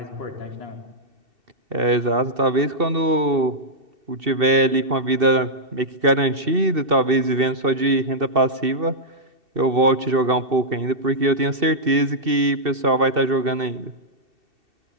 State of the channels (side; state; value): left; late; 2.7 ms